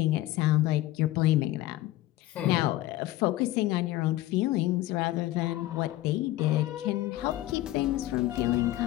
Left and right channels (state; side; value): quieter; right; 15.9 dB